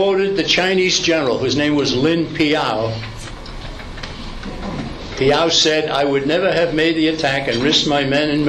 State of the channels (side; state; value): both; identical; correlation 1.00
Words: the Chinese general, whose name was Lin Piao. Piao said, "I would never have made the attack and risked my men and